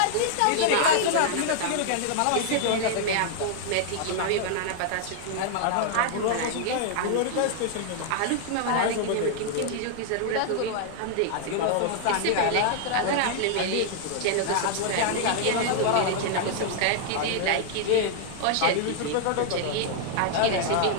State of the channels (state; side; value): different; both; correlation -0.01